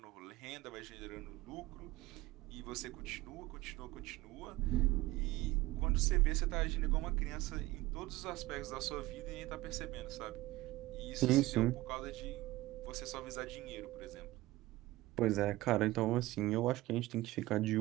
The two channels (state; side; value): quieter; left; 18.2 dB